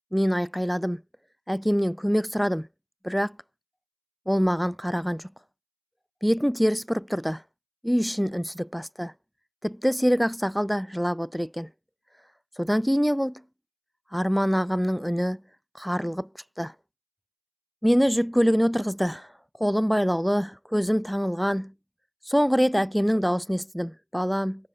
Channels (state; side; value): identical; both; correlation 1.00